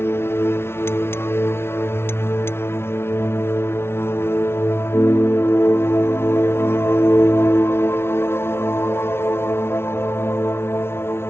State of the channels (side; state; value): right; late; 0.12 ms